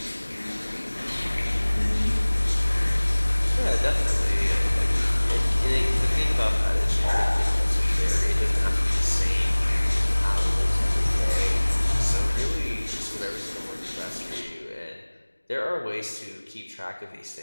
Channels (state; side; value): inverted; both; correlation -1.00